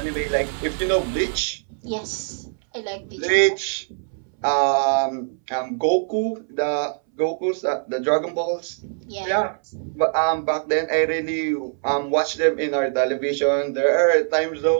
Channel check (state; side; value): silent; left; 64 dB below the other